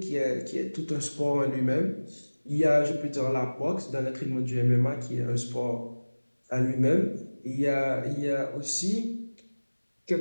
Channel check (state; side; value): inverted; both; correlation -1.00